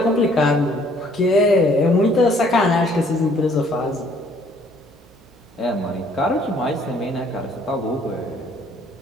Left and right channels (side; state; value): right; noise; hum, 28 dB below the sound